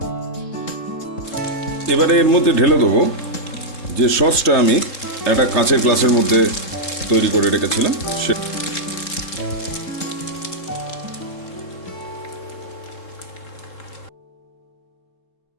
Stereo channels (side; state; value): right; late; 3.7 ms